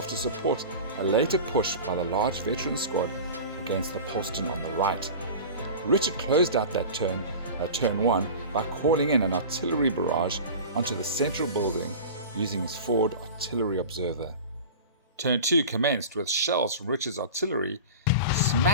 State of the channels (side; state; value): both; inverted; correlation -0.33